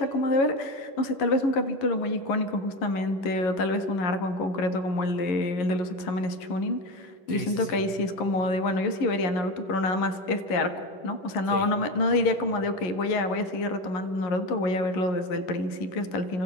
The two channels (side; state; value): right; late; 11 ms